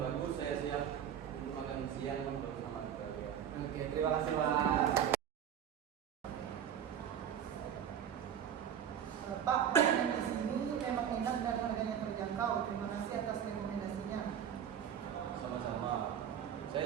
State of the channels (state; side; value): quieter; left; 9.1 dB